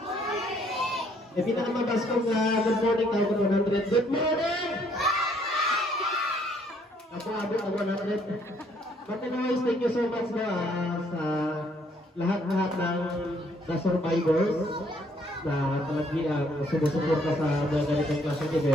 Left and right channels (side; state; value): both; normal; correlation 0.66